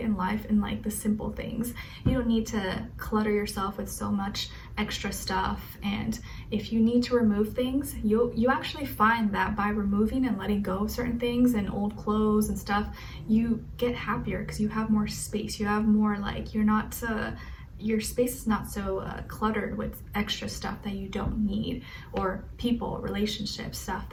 life in like the simple things. You don't need to clutter yourself with so much extra stuff. And if you need to remove things, you actually find that by removing and letting go of certain things and old clothes and stuff, you get happier because you have more space. You have more, like, you're not your space is not so cluttered with extra stuff that you don't need, or people, relationships, stuff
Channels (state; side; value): identical; both; correlation 1.00